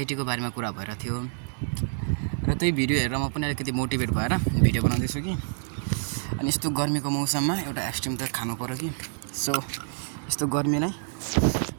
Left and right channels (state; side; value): silent; left; digital silence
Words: बारेमा कुरा भइरहेको थियो र त्यही भिडियो हेरेर म पनि अलिकति मोटिभेट भएर भिडियो बनाउँदैछु कि अनि यस्तो गर्मीको मौसममा एउटा एक्सट्रिम त खानु पर्यो कि सो यस्तो गर्मीलाई